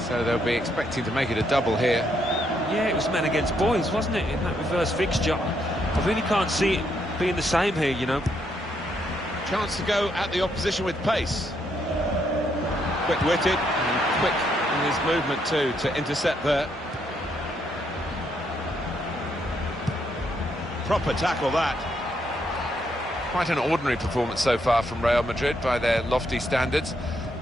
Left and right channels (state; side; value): normal; both; correlation 0.76